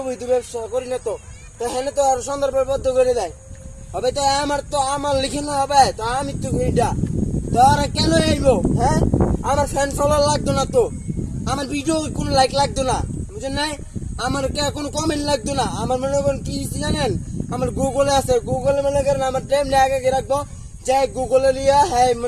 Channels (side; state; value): both; identical; correlation 1.00